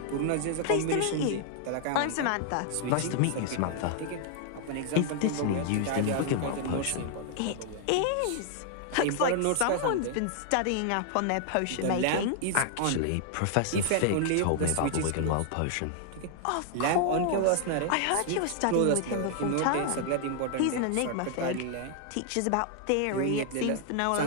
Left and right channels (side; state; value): both; different; correlation 0.00